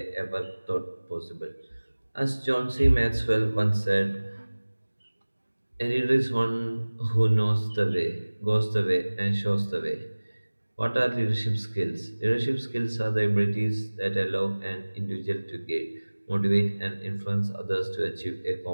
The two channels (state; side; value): inverted; both; correlation -1.00